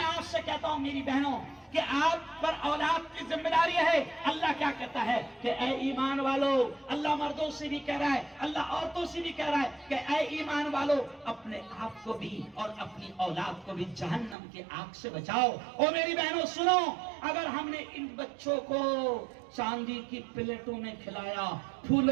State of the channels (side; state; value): left; drops out; at 14.4 s